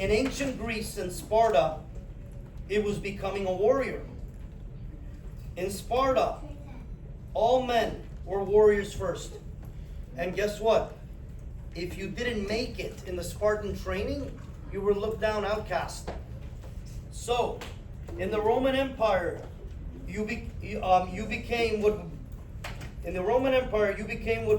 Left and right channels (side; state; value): both; identical; correlation 1.00